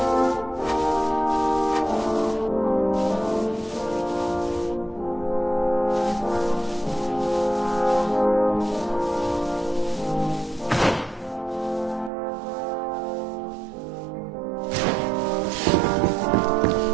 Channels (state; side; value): drops out; left; at 12.1 s